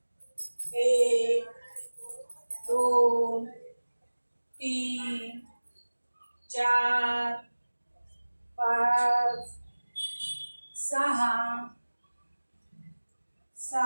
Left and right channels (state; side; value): inverted; both; correlation -1.00